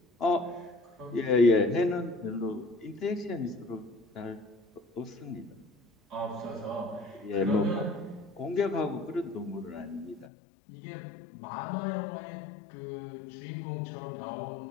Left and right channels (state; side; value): drops out; right; at 10.3 s